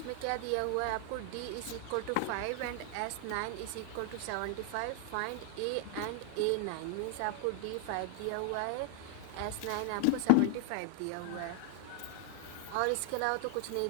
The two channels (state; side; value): different; both; correlation 0.00